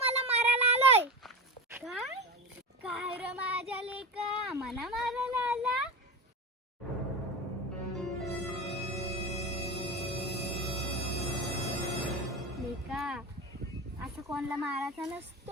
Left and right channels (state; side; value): normal; both; correlation 0.24